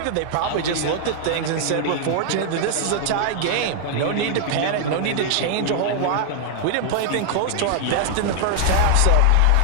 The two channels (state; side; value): different; both; correlation 0.00